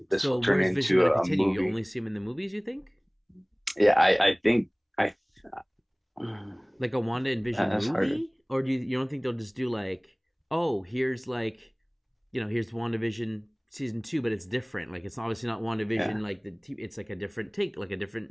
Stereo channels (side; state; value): both; identical; correlation 1.00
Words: This will turn into a movie. You only see him in the movies, you think? Yeah, I think like a Wanda and Vision movie, harder. Or do you don't think they'll just do like, oh, here's like, here's WandaVision season 2, but it's different. Like, it's obviously not WandaVision. Like it's like a different take, like a